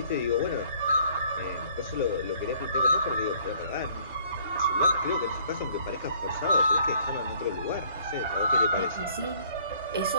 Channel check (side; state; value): both; inverted; correlation -0.59